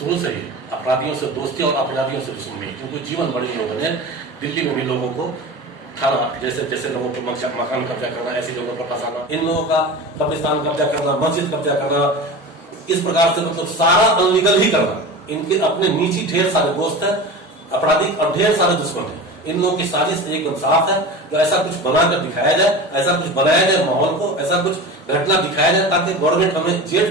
से ही अपराधियों से दोस्ती और अपराधियों से दुश्मनी, क्योंकि जीवन भर इन लोगों ने दिल्ली में भी लोगों को थाना जैसे लोगों को मकान कब्जा करना, ऐसी जगहों पर फंसाना, इन लोगों का कब्रिस्तान कब्जा करना, मस्जिद कब्जा करना, इस प्रकार से मतलब सारा अनलीगल ही करना। इनके अपने नीचे ढेर सारे दोस्त है, अपराधी और ढेर सारे दुश्मन है। इन लोगों की साजिश एकदम साफ है। तो ऐसा कुछ बनाकर दिखाया जाए, ऐसा कुछ बनाया जाए माहौल को, ऐसा कुछ घटना दिखाया जाए ताकि गवर्नमेंट हमें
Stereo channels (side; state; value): both; normal; correlation 0.31